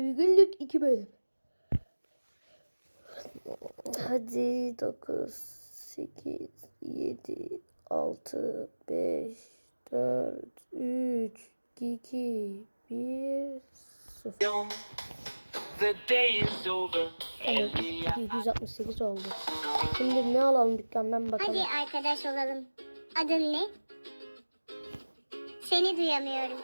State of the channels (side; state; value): both; inverted; correlation -1.00